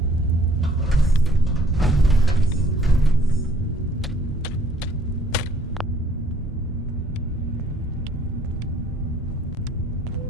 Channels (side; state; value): both; normal; correlation 0.60